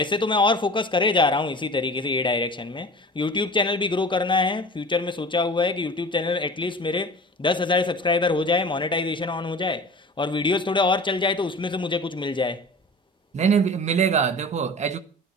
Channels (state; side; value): normal; both; correlation 0.38